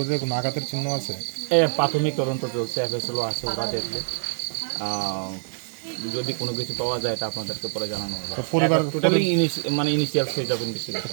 কোনো আঘাতের চিহ্ন আছে? প্রাথমিক তদন্ত চলছে, এফএসএলও আছে, ওরা দেখবে। যদি কোনো কিছু পাওয়া যায় এটা আপনাদেরকে পরে জানানো হবে। পরিবার totally initial stage of investigation.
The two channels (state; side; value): silent; left; 62 dB below the other